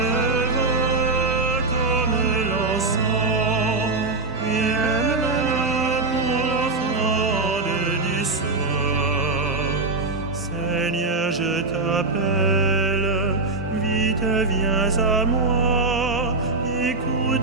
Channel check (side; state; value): left; quieter; 3.5 dB